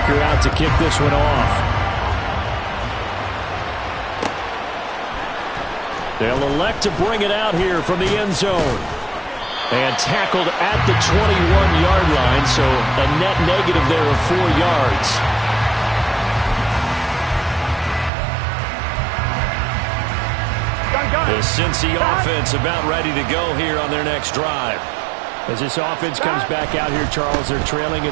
out to kick this one off. They'll elect to bring it out here from the end zone. And tackled at the 21-yard line, so a net negative there of 4 yards. The Cincy offense about ready to go here on their next drive. As this offense comes back out here, Charles, they're trailing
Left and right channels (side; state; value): left; drops out; at 18.1 s